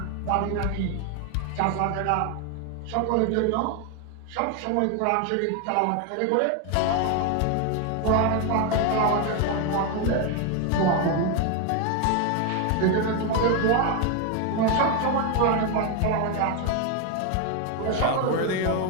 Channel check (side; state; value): both; different; correlation 0.01